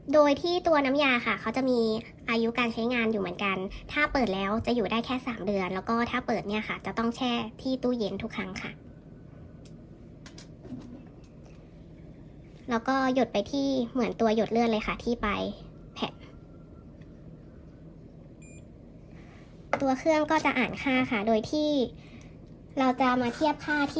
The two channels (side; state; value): both; identical; correlation 1.00